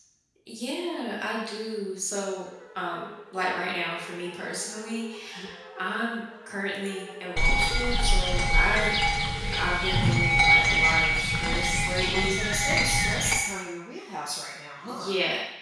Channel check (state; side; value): identical; both; correlation 1.00